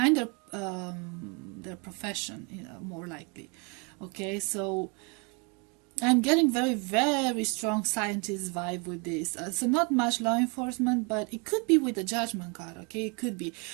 their profession, more likely. Okay, so I'm getting very, very strong scientist vibe with this. So not much law enforcement, but it could be with the Judgment card. Okay, it could be.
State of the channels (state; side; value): quieter; left; 33.0 dB